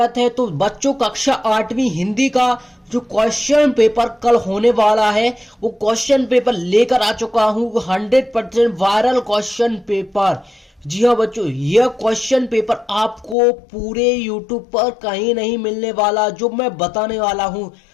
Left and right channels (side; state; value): right; drops out; at 13.4 s